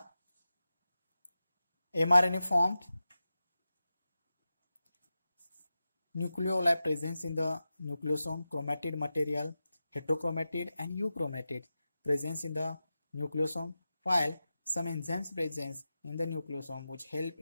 mRNA formed, nucleoli presence in the nucleosome, chromatid material, heterochromatid and euchromatid presence in the nucleosome, while some enzymes presence in the nucleosome which help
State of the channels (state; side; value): inverted; both; correlation -0.93